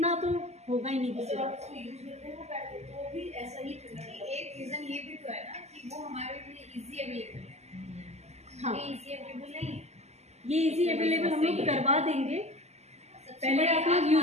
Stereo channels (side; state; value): left; late; 0.32 ms